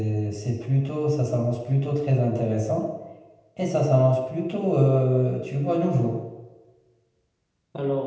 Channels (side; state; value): both; identical; correlation 1.00